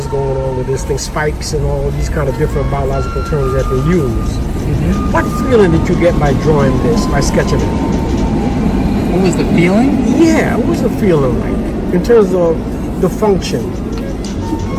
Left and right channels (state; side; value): identical; both; correlation 1.00